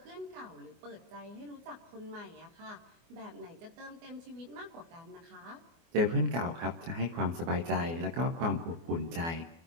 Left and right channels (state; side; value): late; left; 24 ms